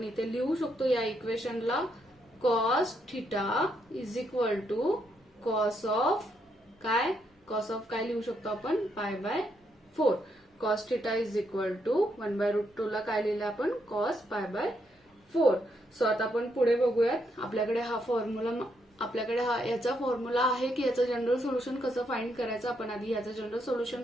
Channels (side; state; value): both; normal; correlation 0.77